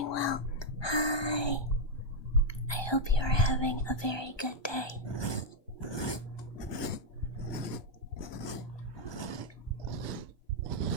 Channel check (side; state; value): right; late; 1.2 ms